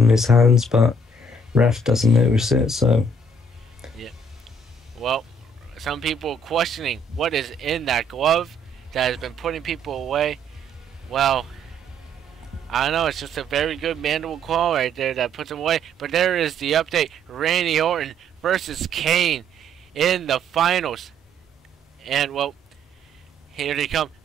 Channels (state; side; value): normal; both; correlation 0.65